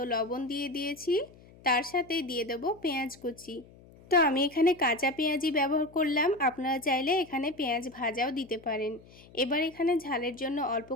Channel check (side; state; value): left; noise; hum, 23 dB below the sound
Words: লবণ দিয়ে দিয়েছি, তার সাথেই দিয়ে দেব পেঁয়াজ কুচি। তো আমি এখানে কাঁচা পেঁয়াজই ব্যবহার করলাম, আপনারা চাইলে এখানে পেঁয়াজ ভাজাও দিতে পারেন। এবার এখানে ঝালের জন্য অল্প